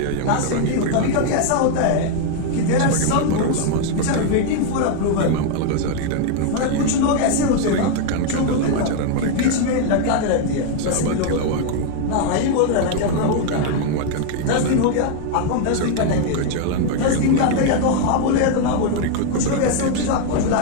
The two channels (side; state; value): both; different; correlation 0.00